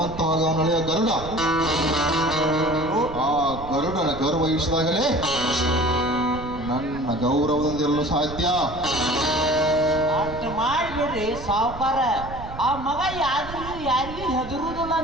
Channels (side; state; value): right; noise; rumble, 12 dB below the sound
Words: ಅವನಳೆಯ ಗರುಡ. ಆ ಗರುಡನ ಗರ್ವ ಇಳಿಸಿದಾಗಲೇ ನನ್ನ ಗೌರವದಿಂದಿರಲು ಸಾಧ್ಯ. ಅಷ್ಟು ಮಾಡಿಬಿಡ್ರಿ ಸಾವುಕಾರ. ಆ ಮಗ ಯಾರಿಗೂ ಹೆದರುದಿಲ್ಲ